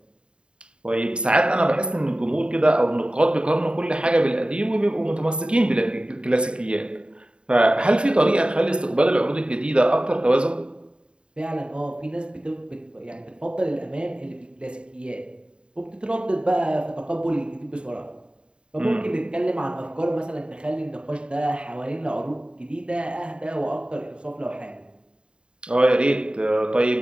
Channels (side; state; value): left; late; 0.053 ms